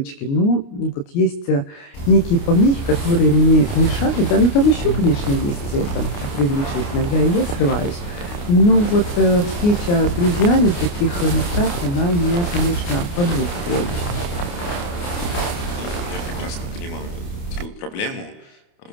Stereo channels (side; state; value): right; late; 29 ms